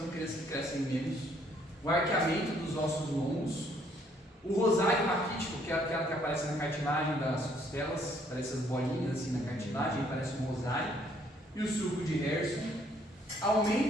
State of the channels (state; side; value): normal; both; correlation 0.65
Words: crianças que crescem menos, o arqueamento dos ossos longos, o rosário raquítico, que é aquela que aparece na cartilagem das costelas, parece as bolinhas assim na cartilagem, parece um rosário, e o sulco de Herson,